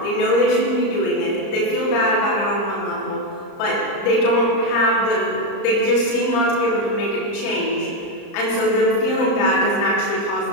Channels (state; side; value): late; right; 34 ms